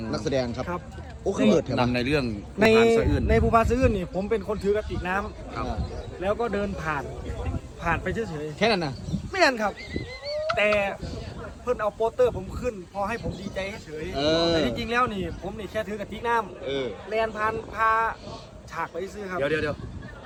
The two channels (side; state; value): both; identical; correlation 1.00